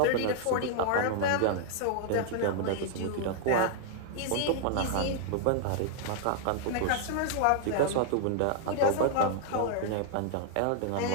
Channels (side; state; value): both; different; correlation -0.01